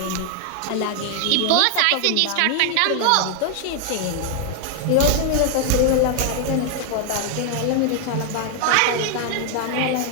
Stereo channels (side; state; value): both; different; correlation 0.00